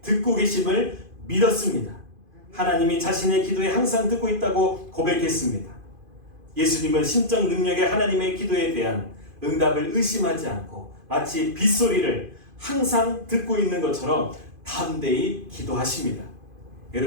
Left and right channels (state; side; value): late; left; 2.5 ms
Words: 듣고 계심을 믿었습니다. 하나님이 자신의 기도에 항상 듣고 있다고 고백했습니다. 예수님은 신적 능력의 하나님의 기도에 대한 응답을 의심하지 않고 마치 빗소리를 항상 듣고 있는 것처럼 담대히 기도하십니다.